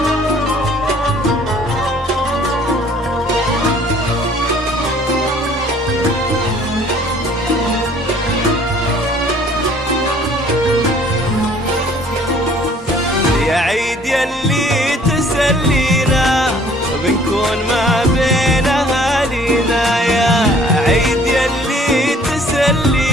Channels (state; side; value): normal; both; correlation 0.56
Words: عيد يلي تسلينا بنكون ما بين أهالينا، يا عيد يلي